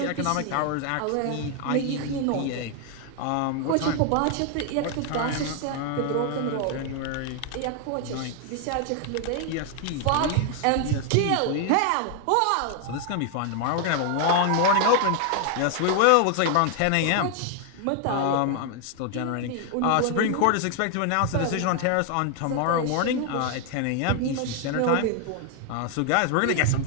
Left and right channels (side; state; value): both; different; correlation 0.00